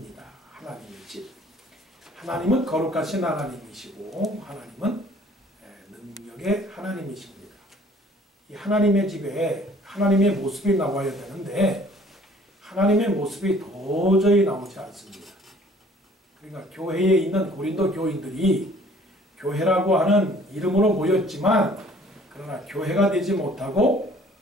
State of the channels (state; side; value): normal; both; correlation 0.55